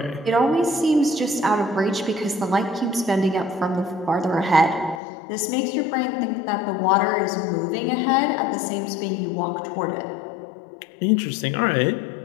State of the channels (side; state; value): right; drops out; at 5.0 s